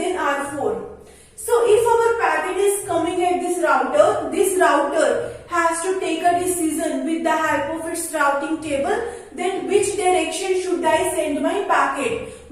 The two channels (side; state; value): both; identical; correlation 1.00